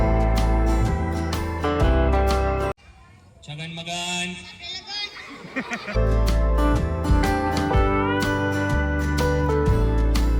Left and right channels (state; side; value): identical; both; correlation 1.00